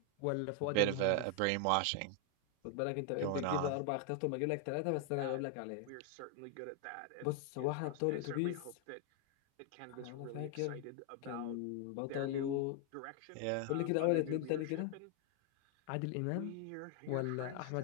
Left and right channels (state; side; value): different; both; correlation 0.00